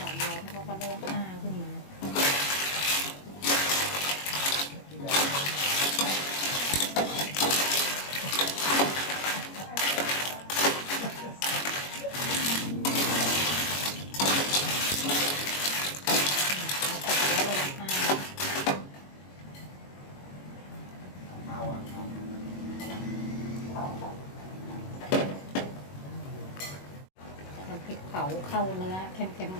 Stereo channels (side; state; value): right; late; 21 ms